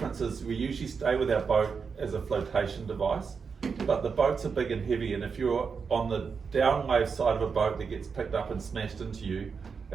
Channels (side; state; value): left; quieter; 5.6 dB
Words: is we usually stay with our boat as a flotation device, but the boats are big and heavy, and if you're on the downwave side of a boat that gets picked up and smashed into you,